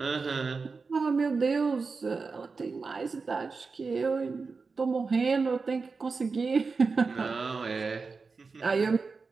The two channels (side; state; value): left; quieter; 4.5 dB